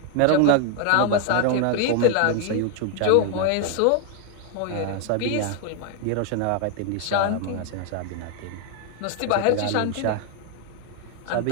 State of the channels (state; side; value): different; both; correlation 0.00